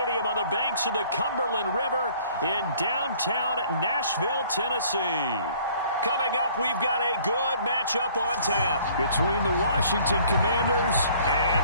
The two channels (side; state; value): both; inverted; correlation -0.56